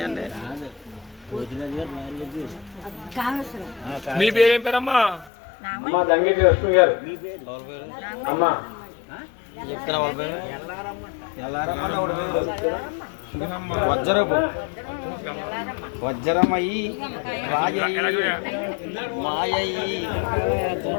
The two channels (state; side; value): drops out; right; at 5.3 s